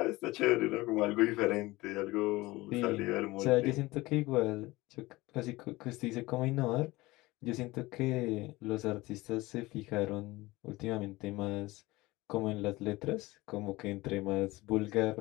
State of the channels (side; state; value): right; quieter; 20.3 dB